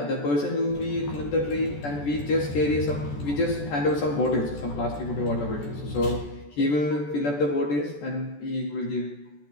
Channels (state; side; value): late; right; 14 ms